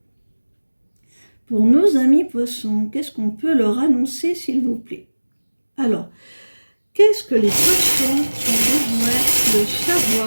Pour nos amis poissons, qu'est-ce qu'on peut leur annoncer, s'il vous plaît? Alors, qu'est-ce que les poissons ont besoin de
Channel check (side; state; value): both; inverted; correlation -1.00